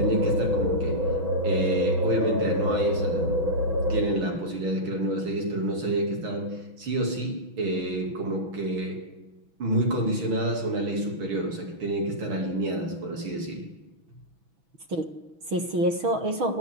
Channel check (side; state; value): left; late; 6.1 ms